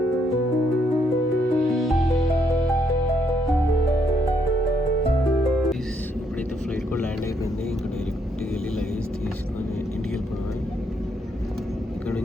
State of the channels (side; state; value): both; normal; correlation 0.73